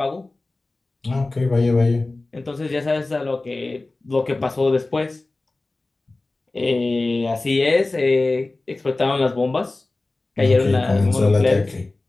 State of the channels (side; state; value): right; quieter; 3.1 dB